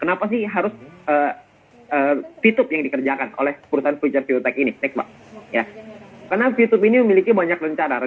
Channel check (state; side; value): identical; both; correlation 1.00